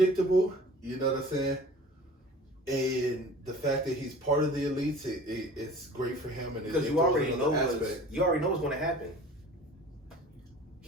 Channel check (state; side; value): normal; both; correlation 0.44